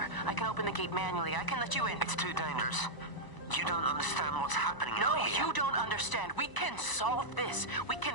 I can open the gate manually. I can let you in. It's too dangerous. You don't understand what's happening No, out here. you don't understand. We can solve this. We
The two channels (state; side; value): late; right; 1.0 ms